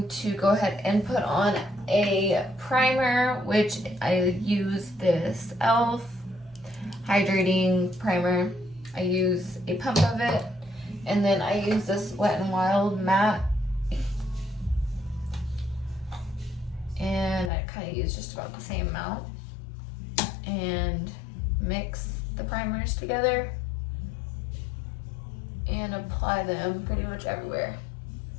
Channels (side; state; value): right; drops out; at 17.5 s